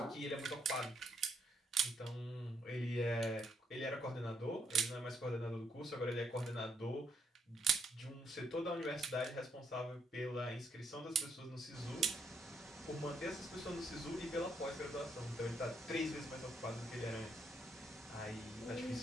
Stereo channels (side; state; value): both; normal; correlation 0.73